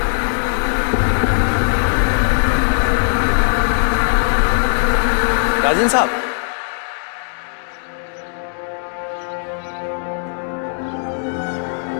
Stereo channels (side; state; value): right; silent; digital silence